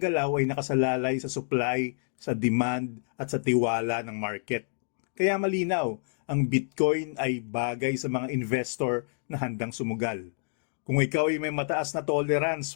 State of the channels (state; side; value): silent; right; digital silence